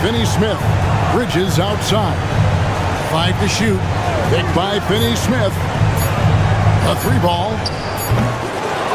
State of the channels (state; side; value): identical; both; correlation 1.00